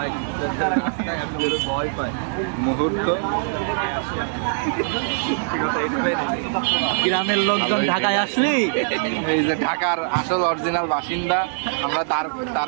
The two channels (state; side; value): silent; left; digital silence